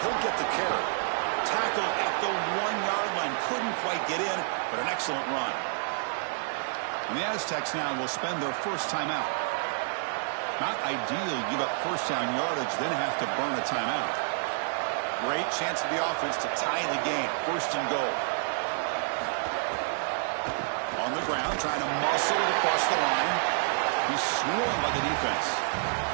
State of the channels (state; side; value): silent; left; 59 dB below the other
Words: he'll get the carry. Tackle at the 1-yard line. Couldn't quite get in, but an excellent run. And the Aztecs now will spend their 1st timeout. Not ideal, give up 1st down yardage, then have to burn a timeout. Great chance for the offense to tie the game. 1st and goal. On the ground, trying to muscle it across the line. He's swarmed by the defense.